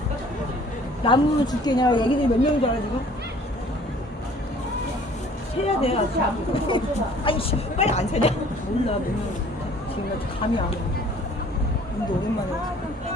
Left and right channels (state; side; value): normal; both; correlation 0.54